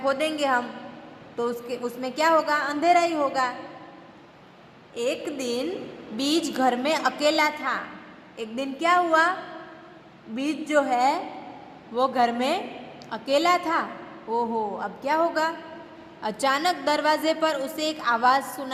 हम तो उसमें क्या होगा? अंधेरा ही होगा। एक दिन बीज घर में अकेला था। एक दिन क्या हुआ? बीज जो है वो घर में अकेला था। ओहो, अब क्या होगा? अचानक दरवाजे पर उसे एक आवाज़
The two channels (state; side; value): identical; both; correlation 1.00